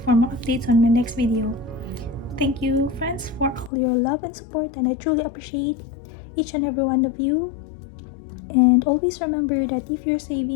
more updates on my next video. Thank you, friends, for all your love and support, and I truly appreciate each and every one of you. And always remember that if you're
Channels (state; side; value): drops out; right; at 3.7 s